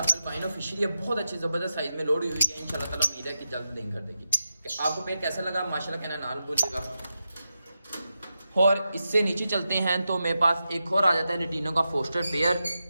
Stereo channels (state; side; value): inverted; both; correlation -0.89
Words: अल्बाइनो फिशरी है, बहुत अच्छी ज़बरदस्त साइज में लोड हुई है। इंशाल्लाह ताला उम्मीद है कि जल्द लिंक कर देगी। आपको पेयर कैसा लगा माशाल्लाह कहना ना भूलिएगा। और इससे नीचे चलते हैं तो मेरे पास एक और आ जाता है लटीनो का फोस्टर पेयर,